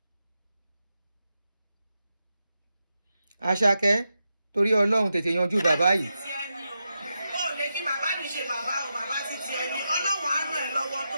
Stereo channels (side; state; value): both; inverted; correlation -0.88